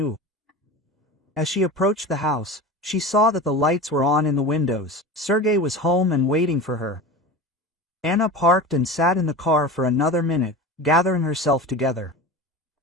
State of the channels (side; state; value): both; normal; correlation 0.31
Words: As she approached the house, she saw that the lights were on in the windows. Sergei was home and waiting for her. Anna parked and sat in the car for another minute, gathering herself together.